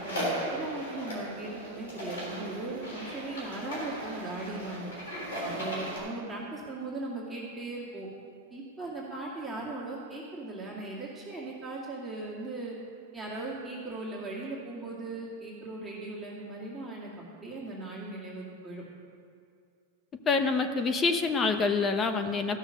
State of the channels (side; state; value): both; normal; correlation 0.35